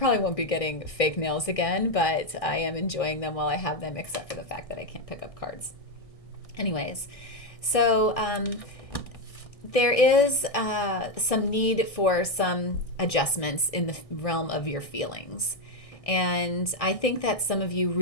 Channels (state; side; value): late; right; 1.6 ms